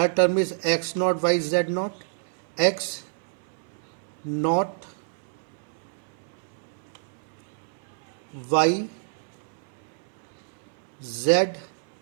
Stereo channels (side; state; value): left; silent; 59 dB below the other